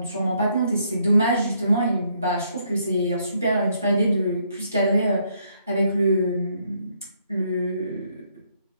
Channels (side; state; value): both; inverted; correlation -0.71